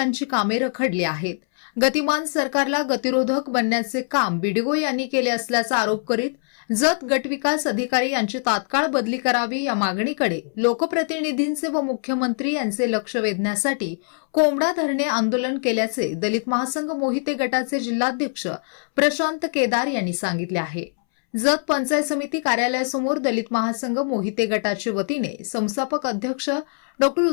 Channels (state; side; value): silent; right; 64 dB below the other